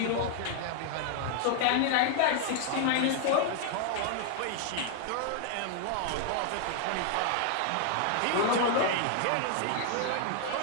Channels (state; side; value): different; both; correlation 0.00